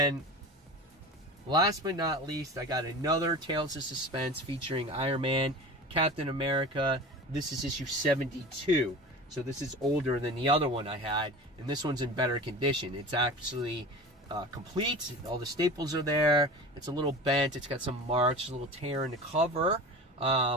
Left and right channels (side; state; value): both; normal; correlation 0.34